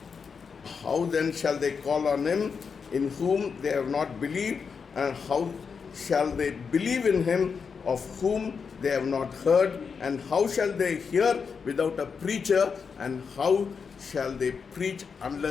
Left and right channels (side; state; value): right; quieter; 5.8 dB